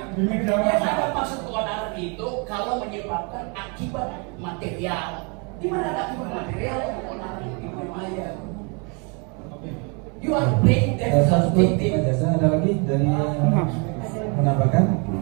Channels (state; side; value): quieter; left; 33.7 dB